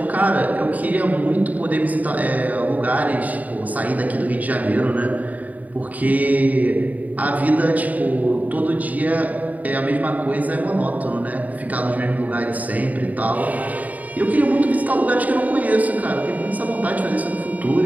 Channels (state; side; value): late; left; 0.073 ms